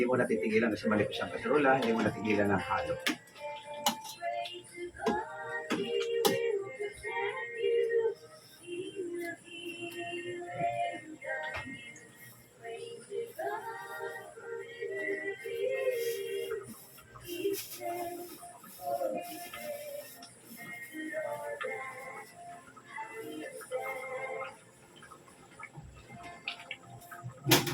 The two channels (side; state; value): both; identical; correlation 1.00